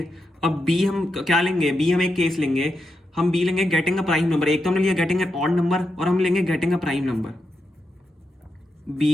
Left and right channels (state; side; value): normal; both; correlation 0.85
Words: अब बी हम क्या लेंगे, बी हम एक केस लेंगे, हम बी लेंगे गेटिंग अ प्राइम नंबर। एक तो हमने लिया गेटिंग एन ऑड नंबर और हम लेंगे getting a prime number.